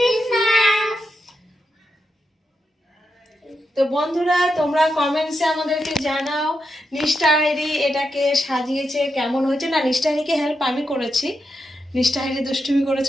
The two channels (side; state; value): both; normal; correlation 0.85